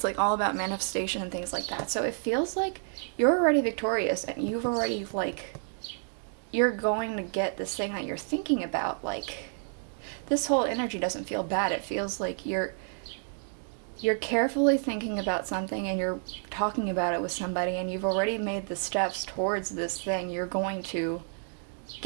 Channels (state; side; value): silent; left; 58 dB below the other